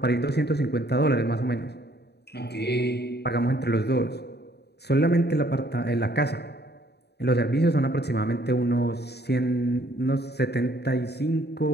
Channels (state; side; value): late; right; 0.48 ms